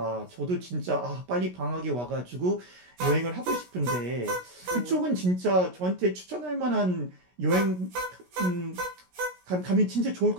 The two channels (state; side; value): late; left; 16 ms